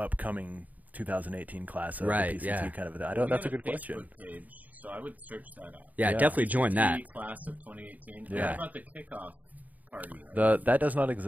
2018 class of Right, the PCT yeah. kind of. I We don't. That's got a good question. Facebook page, so I would search that out. Yeah, Yeah. definitely join that. PCT Class of 2018. Yeah. What about the kickoff party? That does not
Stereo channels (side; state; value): left; late; 0.076 ms